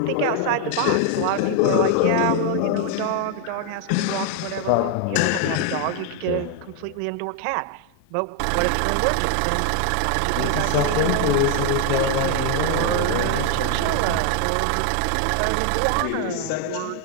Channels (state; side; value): different; both; correlation 0.01